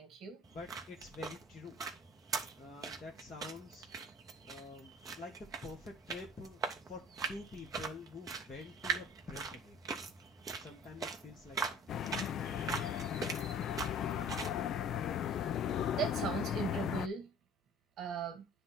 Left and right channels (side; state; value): both; normal; correlation 0.47